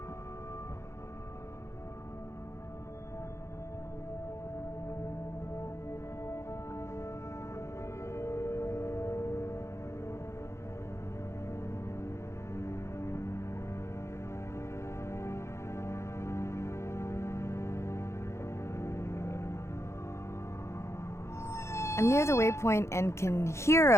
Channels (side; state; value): right; late; 0.13 ms